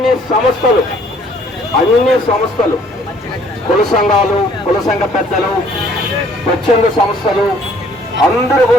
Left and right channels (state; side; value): normal; both; correlation 0.60